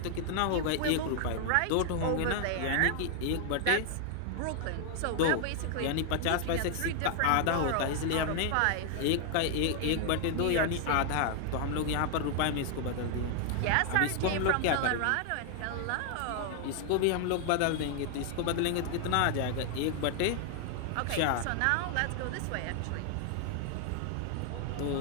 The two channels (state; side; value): different; both; correlation 0.00